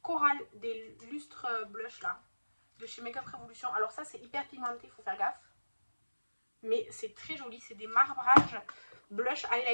Coral des lustres blush là, de chez Makeup Revolution. Alors ça, c'est hyper pigmenté, il faut faire gaffe. Mais c'est très joli, c'est des marbrages blush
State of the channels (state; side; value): inverted; both; correlation -1.00